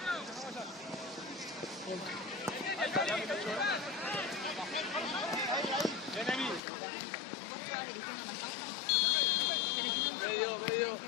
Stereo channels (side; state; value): right; drops out; at 6.6 s